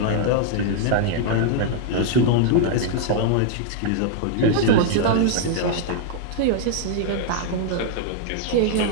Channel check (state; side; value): different; both; correlation 0.00